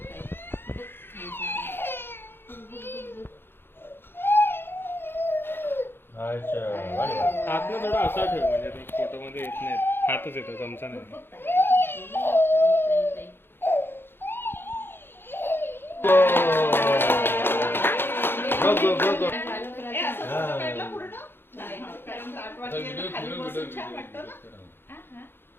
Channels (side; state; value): right; late; 0.10 ms